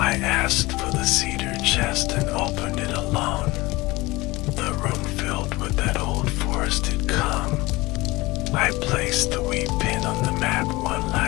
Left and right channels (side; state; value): right; quieter; 21.4 dB